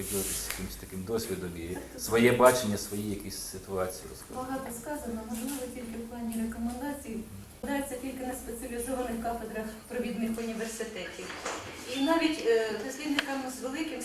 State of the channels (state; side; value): identical; both; correlation 1.00